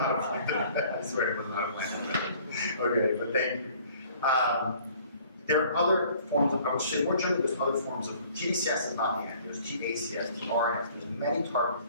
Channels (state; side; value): inverted; both; correlation -0.55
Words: a planted. I swear it was not a planted question. Okay, but thank you. There are other forms of, I would say more generally, there's other forms of, tDCS is not the end. There's tACS, tRNS, there's many targets,